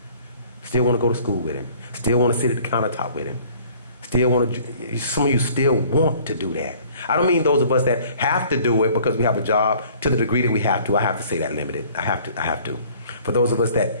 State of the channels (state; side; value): inverted; both; correlation -0.54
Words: still want to go to school with him, still want to sit at the countertop with him. Still want to, some of you still want to do that. I don't mean those of us that have to do it because we have a job to the degree that we have to. I have to say that limited. I have to. For those of us